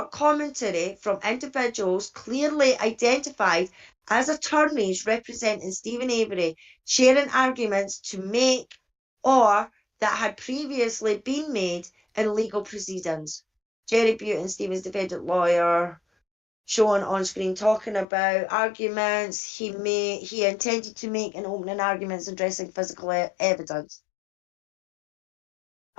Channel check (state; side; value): drops out; right; at 18.1 s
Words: commentary from individuals clearly identified as attorneys representing Stephen Avery, sharing arguments to make or that had previously been made in legal proceedings. Jerry Butin, Stephen's defendant lawyer, shown on screen talking about arguments he intended to make in opening arguments addressing physical evidence.